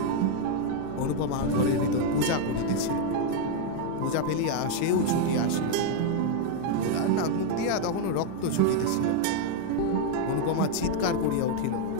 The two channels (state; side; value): different; both; correlation 0.00